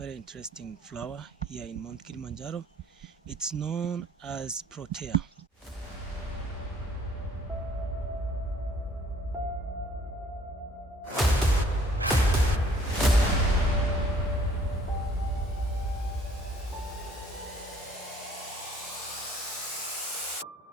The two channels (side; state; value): both; normal; correlation 0.59